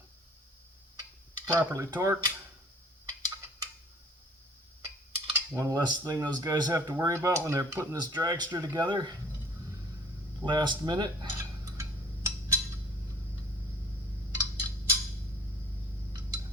properly torqued. One less thing those guys have to worry about when they're putting this dragster together. Last minute.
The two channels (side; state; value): both; normal; correlation 0.52